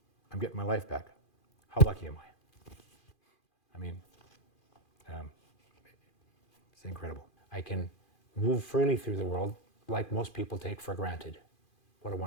getting my life back. How lucky am I? I mean, it's incredible. I can move freely through the world like most people take for granted. What a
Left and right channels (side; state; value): right; late; 2.4 ms